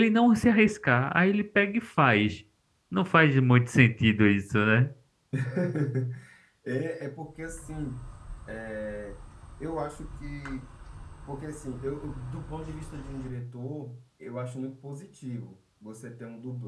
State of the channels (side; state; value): both; identical; correlation 1.00